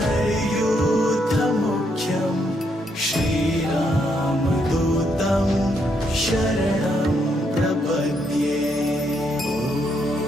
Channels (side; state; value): both; normal; correlation 0.75